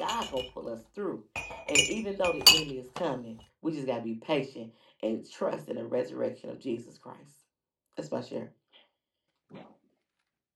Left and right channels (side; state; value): both; identical; correlation 1.00